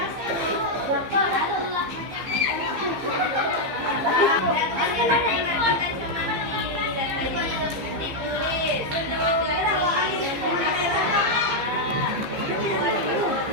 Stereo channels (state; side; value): late; left; 15 ms